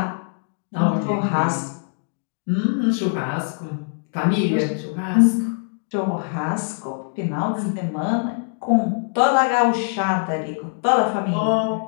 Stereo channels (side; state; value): right; silent; 60 dB below the other